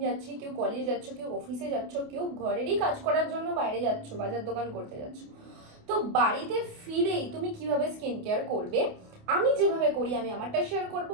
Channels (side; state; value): left; late; 28 ms